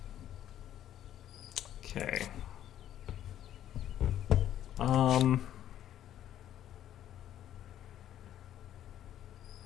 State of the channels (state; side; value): quieter; right; 11.4 dB